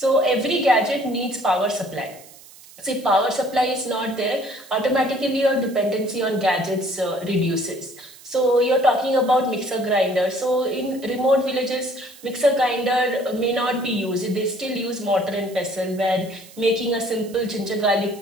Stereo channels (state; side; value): noise; right; hiss, 21 dB below the sound